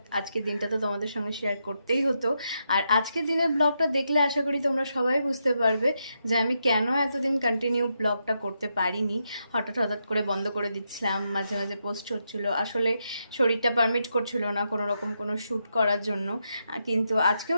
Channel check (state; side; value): inverted; both; correlation -0.83